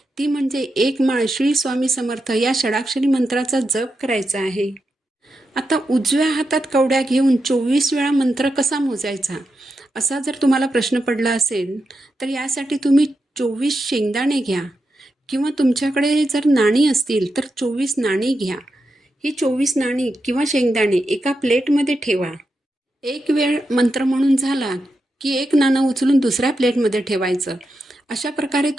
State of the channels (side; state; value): both; normal; correlation 0.87